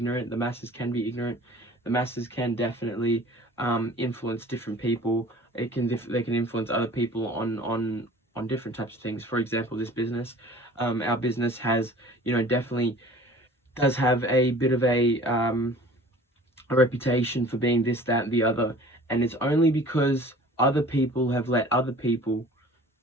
The masses can be ignorant. The masses can definitely influence different people. They can influence other people on different types of things. For example, this business, our business has, definitely does have a bit of a reputation for being this, that, and the other. And it's only because other people have let other people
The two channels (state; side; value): normal; both; correlation 0.46